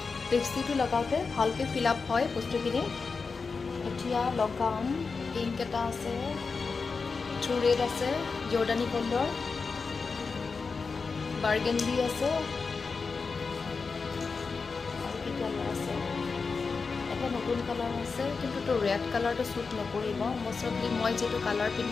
লিপষ্টিকটো লগাওঁতে ভালকৈ ফিল আপ হয় বস্তুখিনি। এতিয়া লগাম, পিংক এটা আছে, ট্ৰু ৰেড আছে, জৰ্ডানী গ'ল্ডৰ, বাৰ্গেণ্ডি আছে, আৰু কি কালাৰ আছে, এটা নতুন কালাৰ আছে, কিন্তু ৰেড কালাৰটো শ্বুট নকৰিব। মষ্টলি মই যিটো কালাৰ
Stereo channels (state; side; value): quieter; right; 4.7 dB